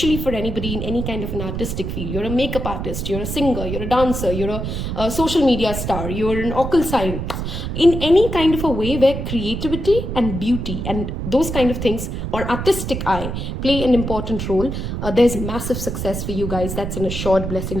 for anybody in any kind of an artistic field. You're a makeup artist, you're a singer, you're a dancer, you're a social media star, you're an occult science. In any kind of a way where creativity and beauty and those kind of things or artistic eye play an important role, there's massive success for you guys. That's an assured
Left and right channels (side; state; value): right; noise; rumble, 4 dB below the sound